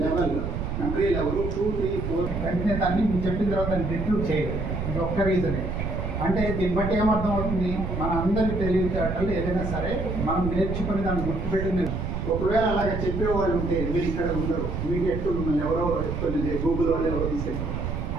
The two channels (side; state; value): right; noise; rumble, 3 dB below the sound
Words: లెవెల్ 2, 3, 4 వెంటనే దాన్ని మీరు చెప్పిన తర్వాత దాన్ని రిట్రూవ్ చేయలేదు. ఇది ఒక్క రీజనే. అంటే దీన్ని బట్టి ఏమర్థం అవుతుంది, మన అందరి తెలివితేటలు ఏదైనా సరే మనం నేర్చుకుని దాన్ని గుర్తుపెట్టింది. ఒకవేళ అలాగే చెప్పేవాళ్ళు ఉంటే మీరు ఇక్కడ ఉండరు, ఇమీడియట్ మిమ్మల్ని ఎవరో కొన్ని గూగుల్ వాళ్ళు ఎవరో తీసుకెళ్ళారు.